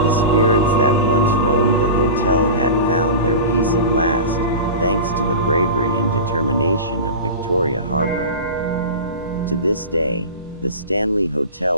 The spirits that once roamed the hotel had found their peace at last, thanks to the bravery and determination of Victoria Harbour. To this day, the Stanley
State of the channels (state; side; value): inverted; both; correlation -0.31